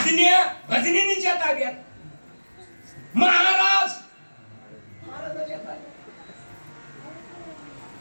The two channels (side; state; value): both; inverted; correlation -1.00